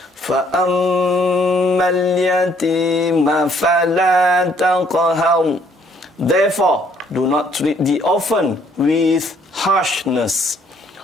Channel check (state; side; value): normal; both; correlation 0.64